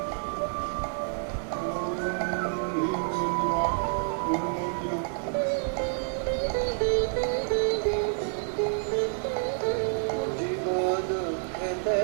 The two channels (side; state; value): left; silent; 59 dB below the other